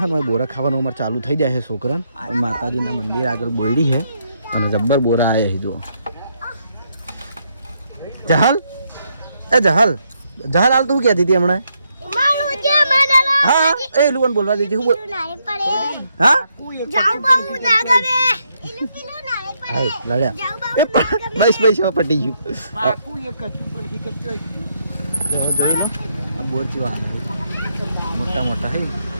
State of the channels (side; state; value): both; inverted; correlation -0.76